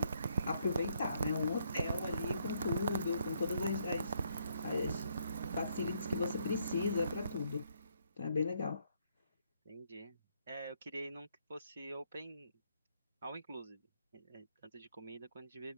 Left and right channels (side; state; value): both; inverted; correlation -0.71